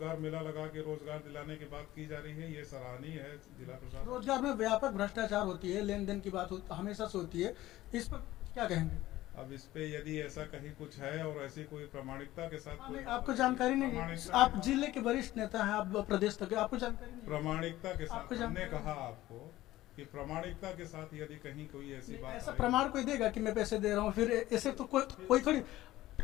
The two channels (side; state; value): right; quieter; 16.0 dB